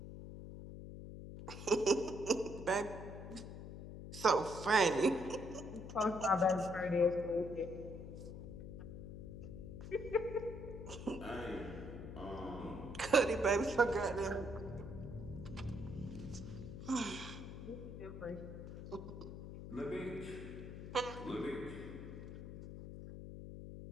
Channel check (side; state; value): left; noise; hum, 10 dB below the sound